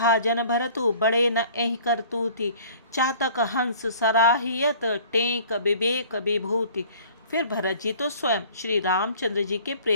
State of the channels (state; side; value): inverted; both; correlation -0.51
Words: भरतु, बड़े न एहि करतूति। चातक हंस सराहियत, टेक विवेक विभूति। फिर भरत जी तो स्वयं श्री रामचंद्र जी के